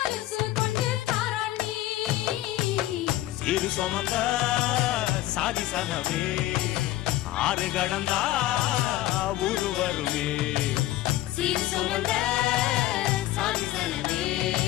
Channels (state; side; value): quieter; right; 15.1 dB